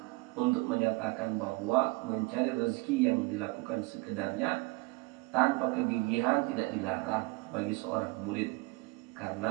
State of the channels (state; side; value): quieter; left; 24.9 dB